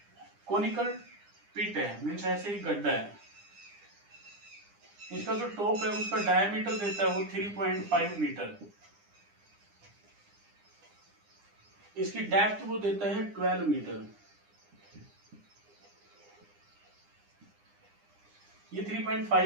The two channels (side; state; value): left; late; 9.9 ms